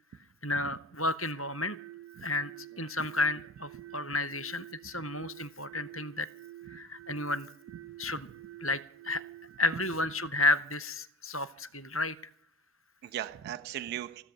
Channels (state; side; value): normal; both; correlation 0.35